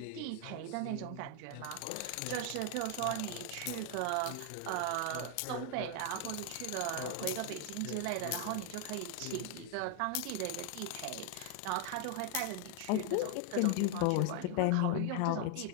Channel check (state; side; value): different; both; correlation 0.00